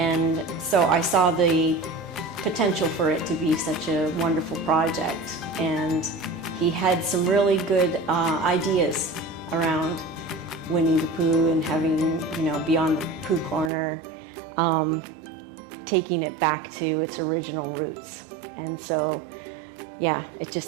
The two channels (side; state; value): left; drops out; at 13.7 s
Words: so I saw the potential for it to be such a wonderful project. And he had some really good ideas around Winnie the Pooh and having, Beyond Pooh Corner, taking it back to its original roots. And so, yeah, it